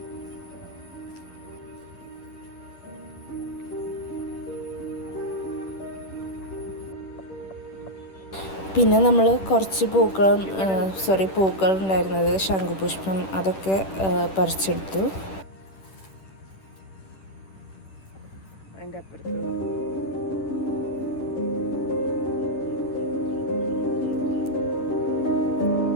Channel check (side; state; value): right; late; 10 ms